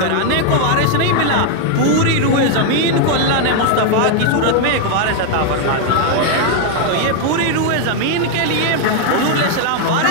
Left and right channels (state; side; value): different; both; correlation 0.00